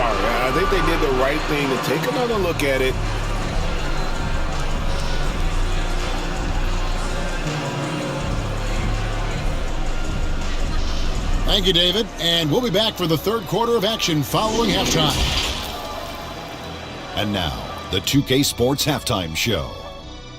I think they did the right thing to take another look at it. Thank you, David. And we'll be back for the third quarter of action following halftime. And now, the 2K Sports Halftime Show.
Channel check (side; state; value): both; identical; correlation 1.00